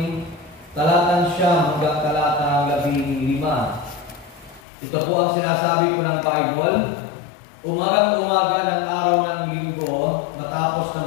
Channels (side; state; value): right; drops out; at 4.6 s